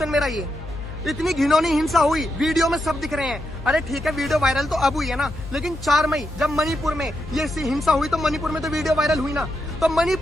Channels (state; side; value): noise; left; hum, 12 dB below the sound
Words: मेरा ये। इतनी घिनौनी हिंसा हुई, वीडियो में सब दिख रहे हैं। अरे ठीक है, वीडियो वायरल तो अब हुई है ना, लेकिन 4 मई जब मणिपुर में ये हिंसा हुई तो मणिपुर में तो वीडियो वायरल हुई ना। तो